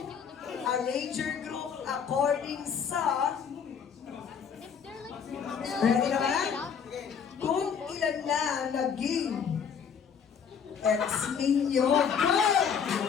a Ranger Group according sa... Ready na ba? Kung ilan na naging ex ninyo.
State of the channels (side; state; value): right; quieter; 7.0 dB